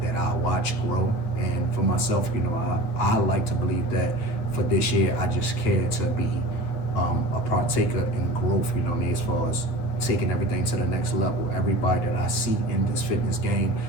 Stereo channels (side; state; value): right; late; 9.3 ms